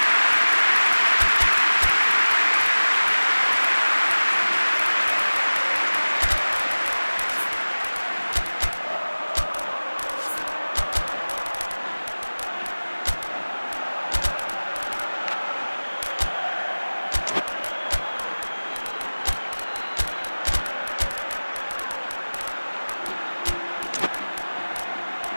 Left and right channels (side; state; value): both; inverted; correlation -1.00